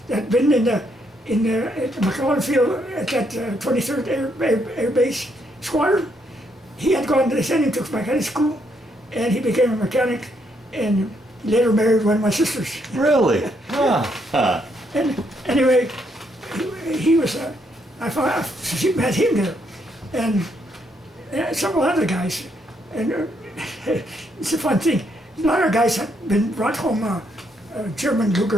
that had been in the McClellan Field at that 23rd Air Base Squadron. He had gone. They sent him to mechanic school, and he became a mechanic, and later married one of my sisters. Really? Huh. And anyway, he was. She met him there, and several other guys, and it's a fun thing. A lot of guys had been brought home German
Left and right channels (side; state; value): both; normal; correlation 0.74